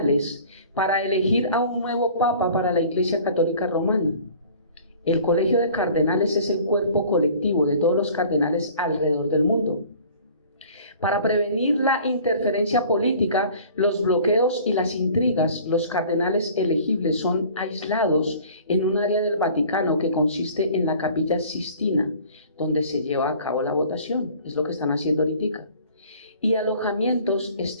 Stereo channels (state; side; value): inverted; both; correlation -0.49